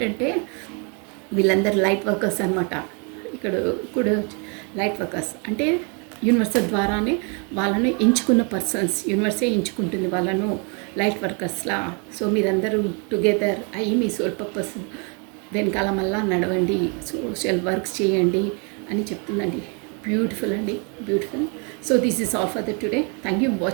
వీళ్ళందరూ లైట్ వర్కర్స్ అనమాట. ఇక్కడ కూడా లైట్ వర్కర్స్ అంటే యూనివర్సల్ ద్వారానే వాళ్ళను ఎంచుకున్న పర్సన్స్, యూనివర్సే ఎంచుకుంటుంది వాళ్ళను లైట్ వర్కర్స్లా. సో మీరందరూ టుగెదర్ అయ్యి మీ సోల్ పర్పస్ వెనకాల మళ్ళా నడవండి, సోషల్ వర్క్స్ చేయండి అని చెప్తుందండి. బ్యూటిఫుల్ అండి, beautiful. So this is all for the today. Thank you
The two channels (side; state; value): left; quieter; 35.6 dB